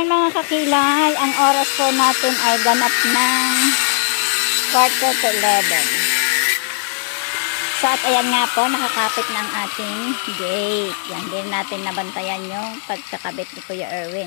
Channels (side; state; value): right; silent; digital silence